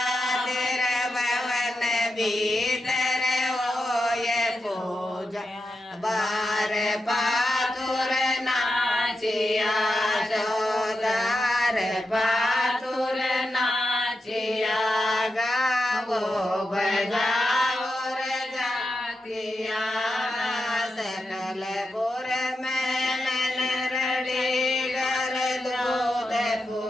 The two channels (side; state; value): both; normal; correlation 0.88